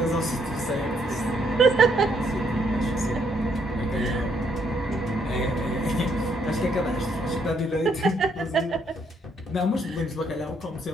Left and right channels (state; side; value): normal; both; correlation 0.72